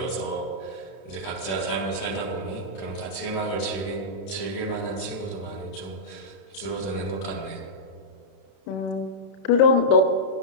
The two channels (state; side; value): late; right; 32 ms